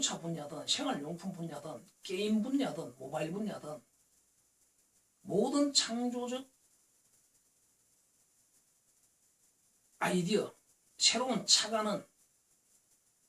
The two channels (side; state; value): both; identical; correlation 1.00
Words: 분야든 생활용품 분야든 게임 분야든 모바일 분야든 모든 창조적 아이디어, 새로운 착안은